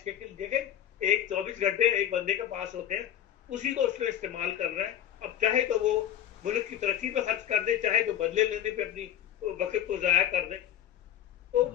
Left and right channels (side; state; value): right; quieter; 10.8 dB